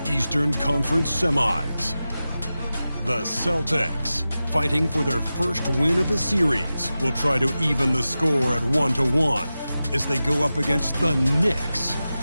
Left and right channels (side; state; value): both; inverted; correlation -0.94